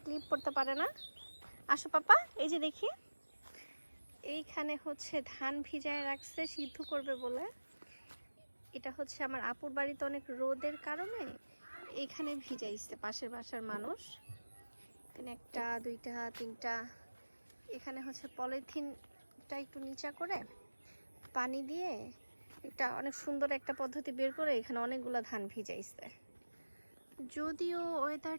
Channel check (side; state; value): both; inverted; correlation -1.00